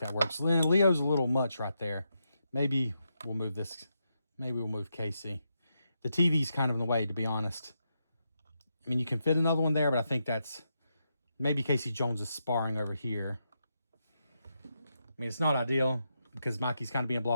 works. Leo's a little much right there. Maybe we'll move this. Maybe we'll move Casey. The TV's kind of in the way, to be honest. I mean, you can fit another one there, but I think that's... Maybe Casey Jones is sparring over here. I mean, it's not ideal because Mikey's kind of being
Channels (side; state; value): both; inverted; correlation -0.84